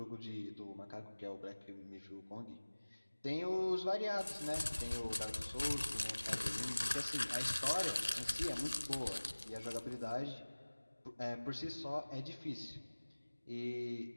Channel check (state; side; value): inverted; both; correlation -1.00